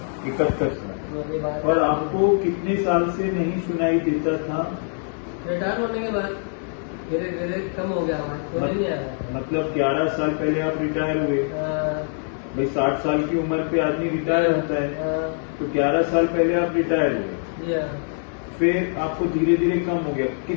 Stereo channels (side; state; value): right; silent; 56 dB below the other